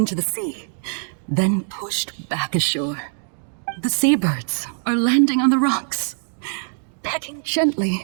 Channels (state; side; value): silent; left; 64 dB below the other